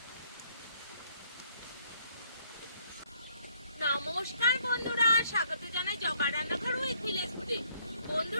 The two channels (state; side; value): inverted; both; correlation -0.67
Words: নমস্কার বন্ধুরা, স্বাগত জানাই জবা রান্নাঘর উইথ ভিলেজ ফুডে।